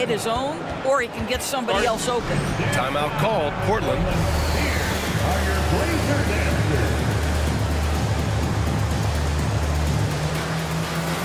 his own, or he can get somebody else open. Timeout called. Portland.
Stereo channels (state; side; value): identical; both; correlation 1.00